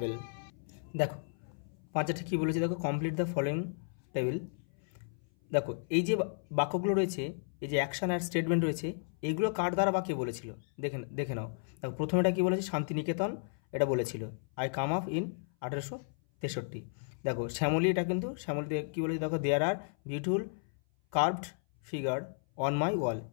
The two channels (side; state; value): right; silent; 55 dB below the other